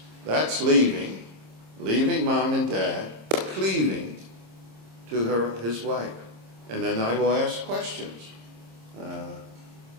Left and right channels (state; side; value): late; left; 26 ms